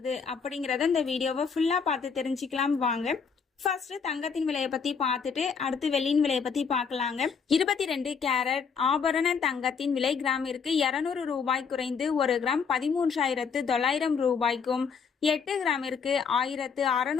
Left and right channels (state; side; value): quieter; right; 6.0 dB